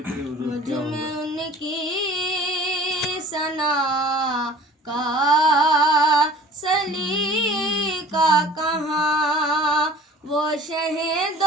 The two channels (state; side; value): normal; both; correlation 0.46